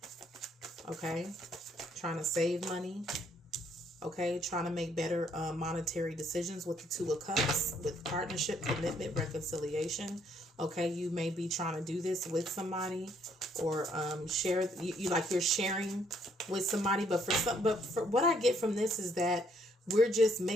Okay. Trying to save money. Okay. Trying to make better monetary decisions with the 2 of Cups, with partnership, commitment, reconciliation. Okay. You may be trying to do this with somebody, or share. You're sharing with somebody. But for what I get from this is that we're just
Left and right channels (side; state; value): both; normal; correlation 0.68